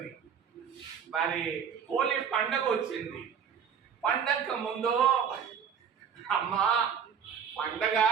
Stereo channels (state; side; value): quieter; left; 7.5 dB